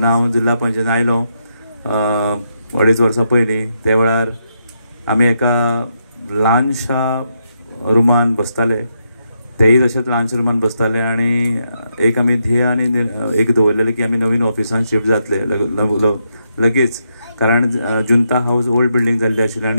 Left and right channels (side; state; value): both; inverted; correlation -0.81